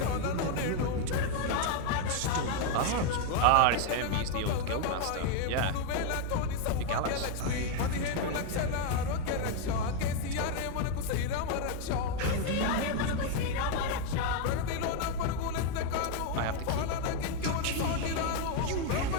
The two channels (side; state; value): both; different; correlation 0.01